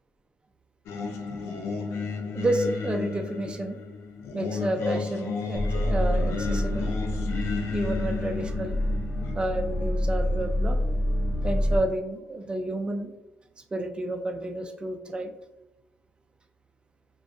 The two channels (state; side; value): normal; both; correlation 0.88